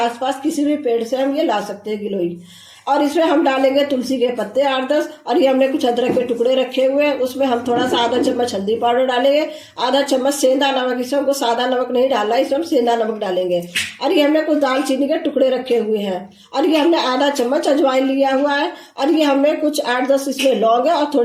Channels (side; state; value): both; identical; correlation 1.00